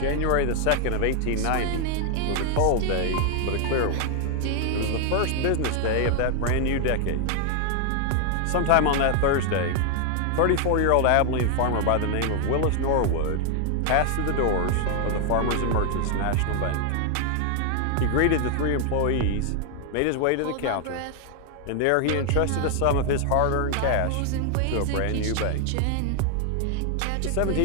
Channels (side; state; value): both; different; correlation 0.00